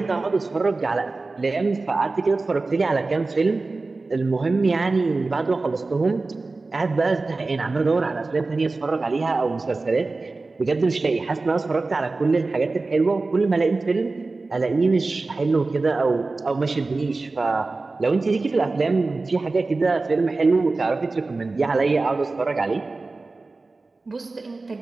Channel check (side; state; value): left; quieter; 3.6 dB